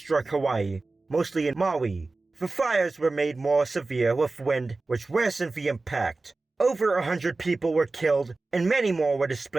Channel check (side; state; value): left; quieter; 3.5 dB